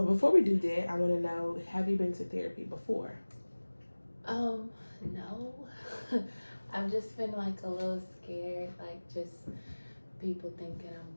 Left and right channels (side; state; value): both; inverted; correlation -1.00